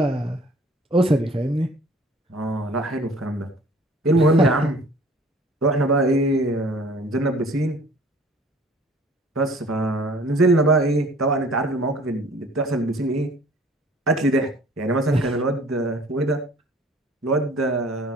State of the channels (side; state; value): both; normal; correlation 0.51